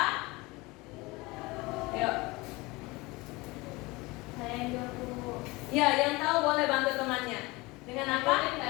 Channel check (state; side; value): quieter; right; 23.1 dB